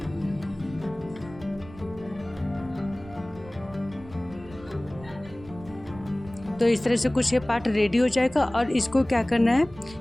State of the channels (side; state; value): right; noise; rumble, 19 dB below the sound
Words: तो इस तरह से कुछ ये पार्ट रेडी हो जाएगा और इसको क्या करना है,